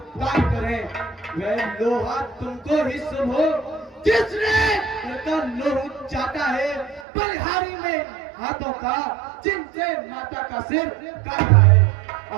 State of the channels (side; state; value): left; drops out; at 7.1 s